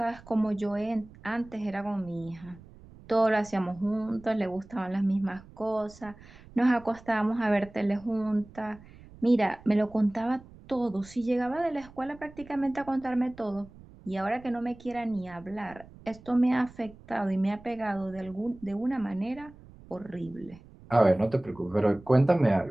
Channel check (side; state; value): right; noise; rumble, 21 dB below the sound